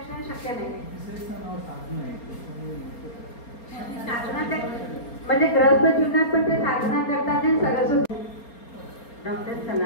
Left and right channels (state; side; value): late; right; 4.3 ms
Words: शक्य नाही. साधना ते म्हणजे ग्रस्त जीवनात पण ते साधना करतात आणि सरस्वती. डॉक्टर